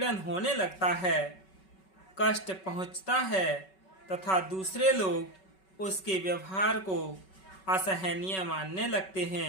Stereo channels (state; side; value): late; right; 5.3 ms